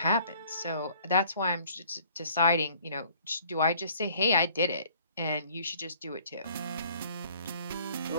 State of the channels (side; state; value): both; inverted; correlation -0.57